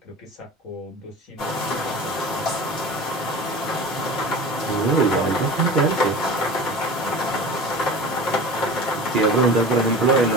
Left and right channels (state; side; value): normal; both; correlation 0.36